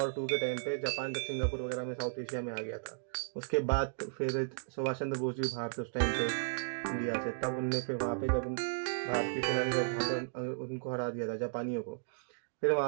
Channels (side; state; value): left; silent; digital silence